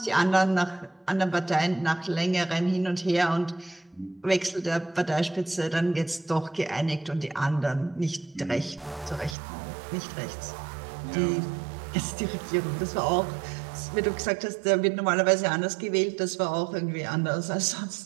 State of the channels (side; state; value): left; drops out; at 9.3 s